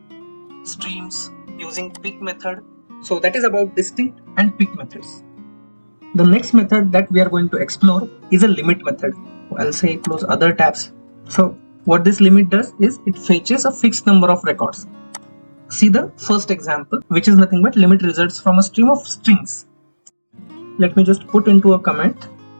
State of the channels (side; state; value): both; inverted; correlation -1.00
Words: streams using pick method. So that is about distinct and pick methods. The next method that we are going to explore is a limit method. I'll say close other tabs. So what this limit does is it fetches a fixed number of records. See the first example, which is nothing but limit results from a stream of strings. Let me just put into a comment.